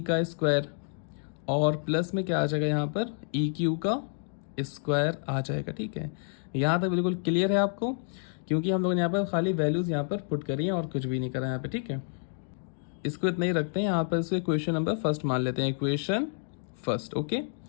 का स्क्वायर और प्लस में क्या आ जाएगा यहाँ पर, ई क्यू का स्क्वायर आ जाएगा। ठीक है, यहाँ तक बिल्कुल क्लियर है आपको, क्योंकि हम लोगों ने यहाँ पर खाली वैल्यूज यहाँ पर पुट करी हैं और कुछ भी नहीं करा यहाँ पे। ठीक है, इसको इतना ही रखते हैं यहाँ पर, इसको इक्वेशन नंबर फर्स्ट मान लेते हैं, इक्वेशन फर्स्ट। ओके,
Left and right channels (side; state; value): right; silent; digital silence